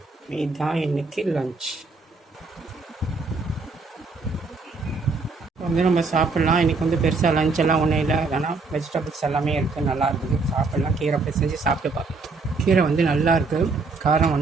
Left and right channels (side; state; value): left; quieter; 4.0 dB